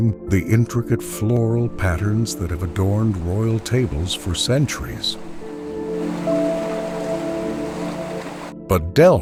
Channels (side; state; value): both; identical; correlation 1.00